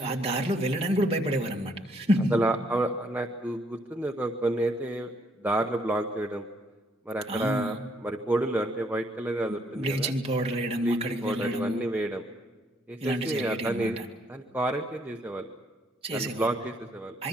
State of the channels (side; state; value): both; normal; correlation 0.69